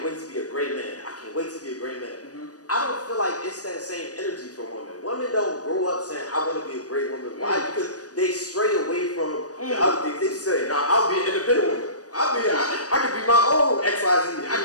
wait to be a great man. I can't wait to be a great man. I don't feel like it's that same energy for women. Women don't grow up saying, I want to be a great woman. Why? Because they stray away from the other things. They say, nah, I'll be an independent woman. I can be my own XYZ. I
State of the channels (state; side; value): late; right; 0.67 ms